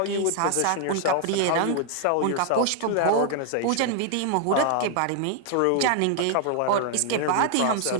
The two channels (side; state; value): both; different; correlation 0.00